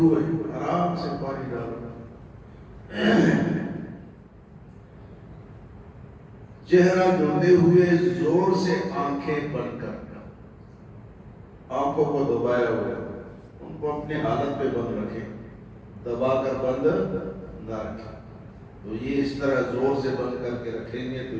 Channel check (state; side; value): identical; both; correlation 1.00